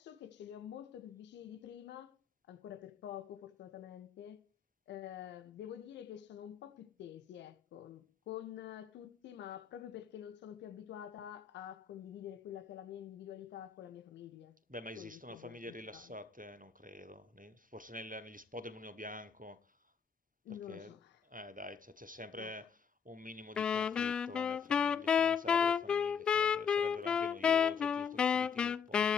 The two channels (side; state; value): right; quieter; 6.8 dB